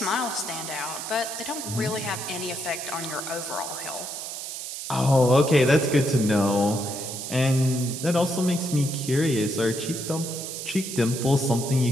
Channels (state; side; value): noise; right; hiss, 7 dB below the sound